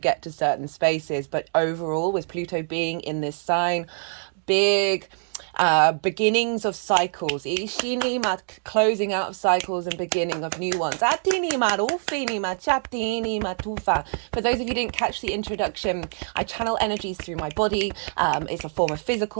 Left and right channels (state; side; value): silent; left; 56 dB below the other